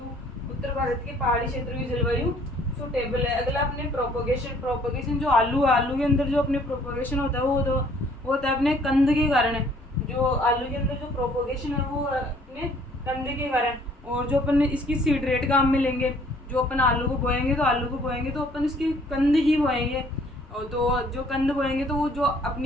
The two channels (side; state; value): both; normal; correlation 0.59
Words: उत्तर भारत के पहाड़ी क्षेत्रों की जलवायु सूटेबल है। अगला अपने प्रोपोगेशन जो आलू के अंदर जो अपने प्रोपोगेशन होता है वो होता है अपने कंद के कारण। जो आलू के अंदर जो प्रोपोगेशन है वो अपने कंद के कारण। और जो अपन इसकी सीड रेट काम में लेंगे, जो अपन आलू को बोएंगे तो अपन इसकी कंद ही बोएंगे। और तो जो कंद बोएंगे तो वो जो